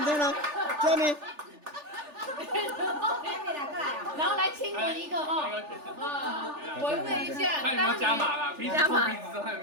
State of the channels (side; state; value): left; late; 3.4 ms